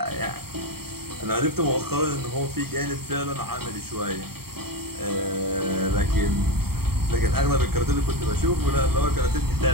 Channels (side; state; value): left; late; 0.95 ms